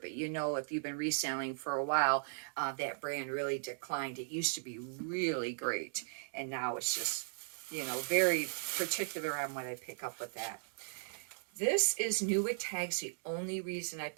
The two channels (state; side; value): silent; left; digital silence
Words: but if you've been reselling for a while, that brand really declined. It used to be really great, and now it's just, very particular on what I pick up with that. This is new with tags. The only reason I